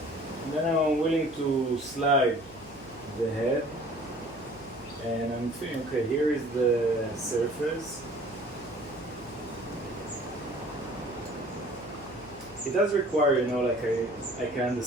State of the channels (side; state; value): right; noise; hum, 23 dB below the sound